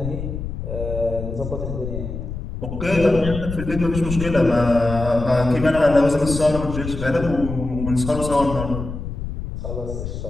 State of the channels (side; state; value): left; noise; rumble, 7 dB below the sound